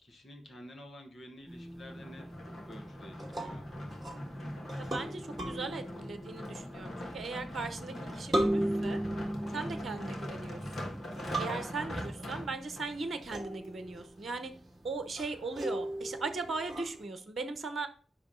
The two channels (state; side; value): normal; both; correlation 0.86